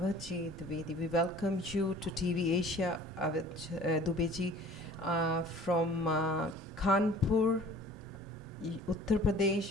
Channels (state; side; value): normal; both; correlation 0.48